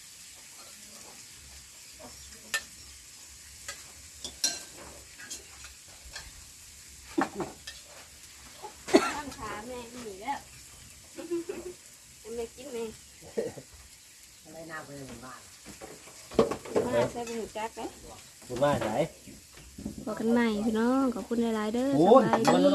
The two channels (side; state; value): both; identical; correlation 1.00